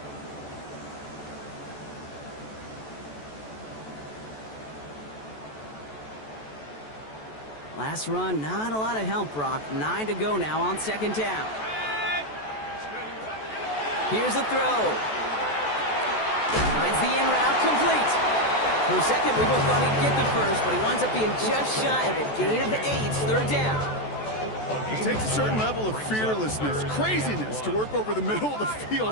Last run, not a lot of help, Brock. 9 to go now on second down. Here's a throw. Finds the in route, complete. For a second, we both thought he'd get the first, but he winds up being just shy of a gain of 8, third down. It takes a certain level of fearlessness, craziness to work over the middle of the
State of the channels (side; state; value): right; late; 14 ms